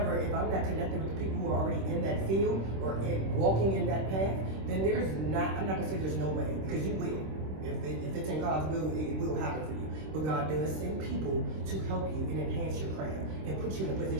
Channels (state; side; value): late; left; 26 ms